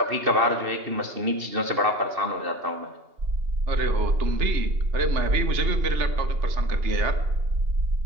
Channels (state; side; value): late; left; 2.8 ms